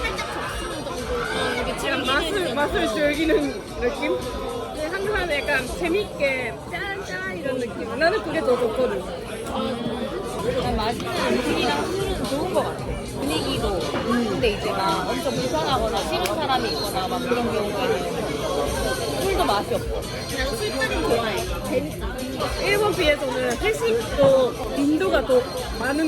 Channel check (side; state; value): both; identical; correlation 1.00